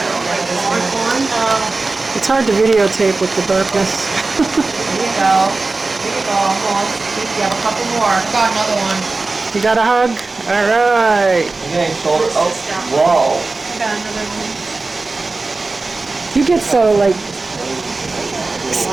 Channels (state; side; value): quieter; left; 3.6 dB